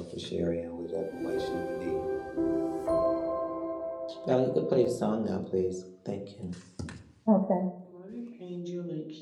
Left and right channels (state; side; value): identical; both; correlation 1.00